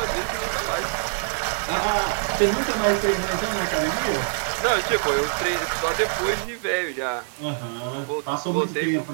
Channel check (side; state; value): left; silent; 59 dB below the other